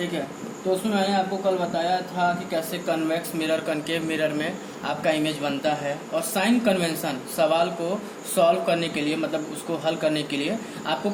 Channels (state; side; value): identical; both; correlation 1.00